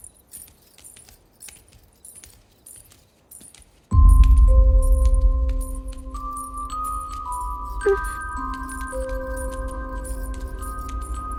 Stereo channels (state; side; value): identical; both; correlation 1.00